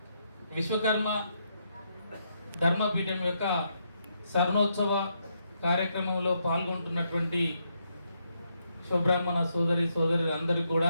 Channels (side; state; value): both; inverted; correlation -0.78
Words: విశ్వకర్మ ధర్మపీఠం యొక్క స్వర్ణోత్సవ కార్యక్రమంలో పాల్గొంటున్నటువంటి శుభ్రాహ్మణ సోదరులందరికీ